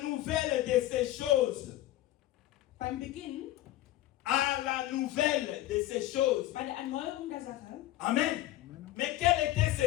nouvelle de ces choses. beim Beginn, À la nouvelle de ces choses. bei der Erneuerung der Sache. Amen. Mais quelles étaient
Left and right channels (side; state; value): right; quieter; 14.9 dB